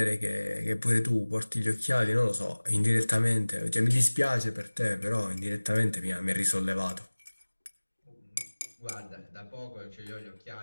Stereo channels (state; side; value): inverted; both; correlation -1.00